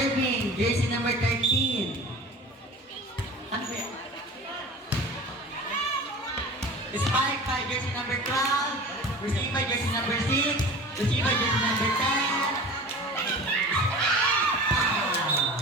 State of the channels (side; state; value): both; normal; correlation 0.38